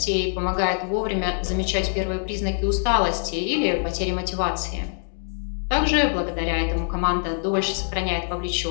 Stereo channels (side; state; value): right; silent; 63 dB below the other